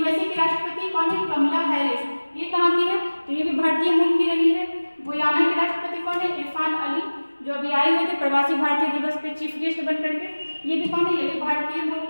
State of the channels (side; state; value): both; inverted; correlation -1.00